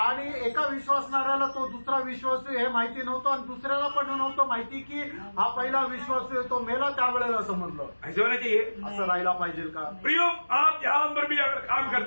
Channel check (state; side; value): inverted; both; correlation -1.00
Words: एका विश्वासणाऱ्याला तो दुसरा विश्वासू हे माहिती नव्हतं, आणि दुसऱ्याला पण नव्हतं माहिती की हा पहिला विश्वासू आहे तो मेला. त्यावेळेला समजलं. ऐसे होना चाहिए. असं राहायला पाहिजे का? प्रियो, आप जहां पर भी अगर काम